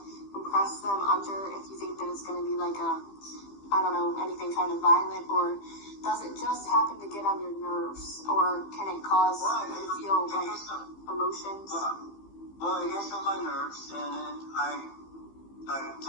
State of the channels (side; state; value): right; late; 15 ms